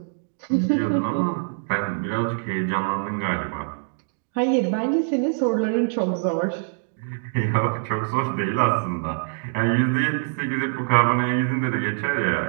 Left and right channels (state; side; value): silent; left; digital silence